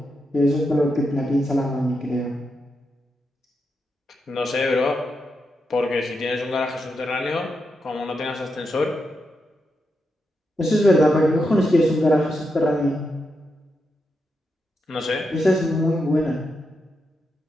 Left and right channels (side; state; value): both; normal; correlation 0.85